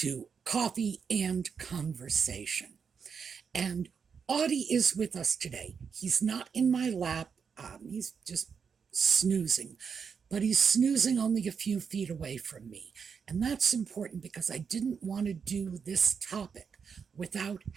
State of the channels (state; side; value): quieter; left; 6.3 dB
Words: Coffee and Conversation. And Audie is with us today. He's not in my lap. He's just snoozing. But he's snoozing only a few feet away from me. And that's important because I didn't want to do this topic without